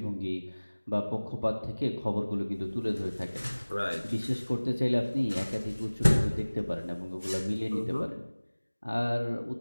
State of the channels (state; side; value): inverted; both; correlation -1.00